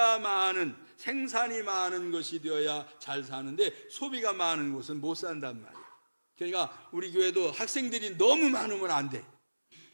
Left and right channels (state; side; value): inverted; both; correlation -1.00